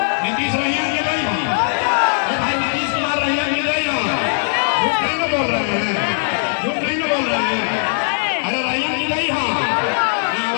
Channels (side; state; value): right; silent; digital silence